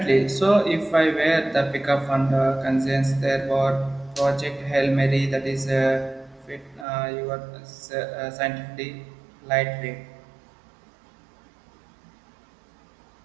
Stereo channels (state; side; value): drops out; left; at 6.9 s